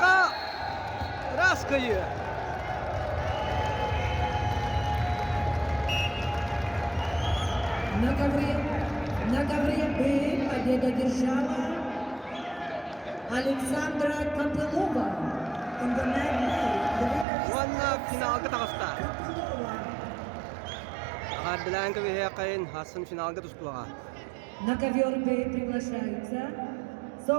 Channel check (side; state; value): left; drops out; at 17.2 s